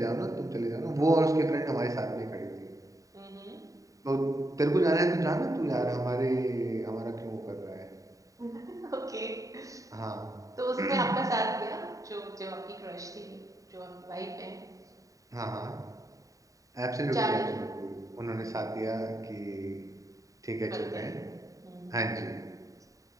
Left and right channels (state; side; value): late; left; 0.16 ms